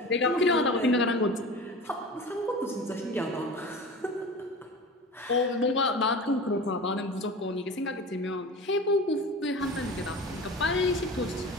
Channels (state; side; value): normal; both; correlation 0.34